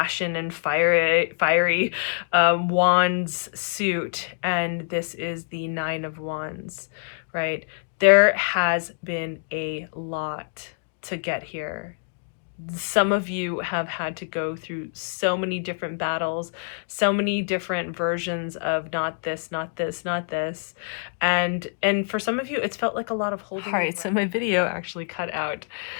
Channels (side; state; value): right; silent; digital silence